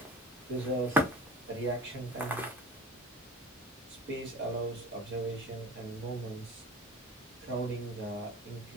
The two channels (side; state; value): both; normal; correlation 0.39